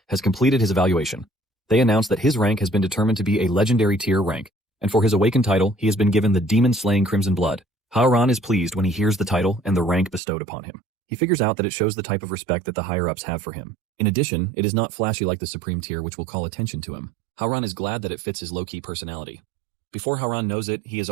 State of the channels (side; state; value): left; drops out; at 10.2 s